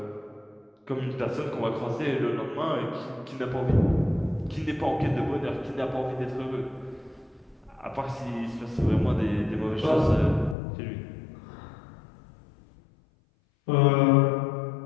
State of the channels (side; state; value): right; drops out; at 10.6 s